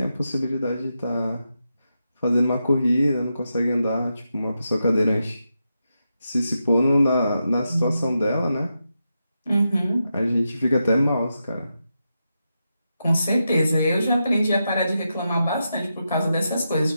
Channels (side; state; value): both; inverted; correlation -0.87